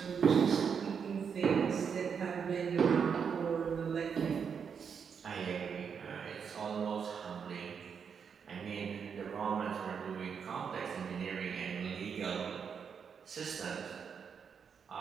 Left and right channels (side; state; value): left; quieter; 6.7 dB